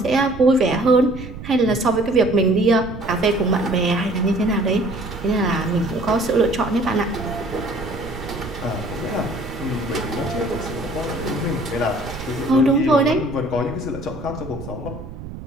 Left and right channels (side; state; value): right; noise; rumble, 12 dB below the sound